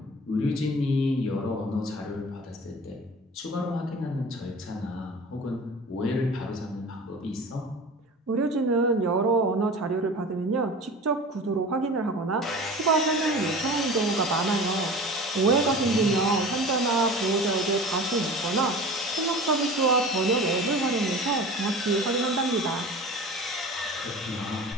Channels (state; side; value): normal; both; correlation 0.37